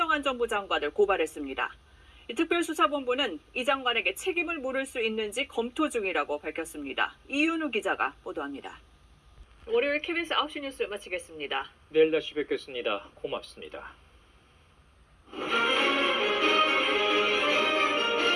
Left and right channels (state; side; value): identical; both; correlation 1.00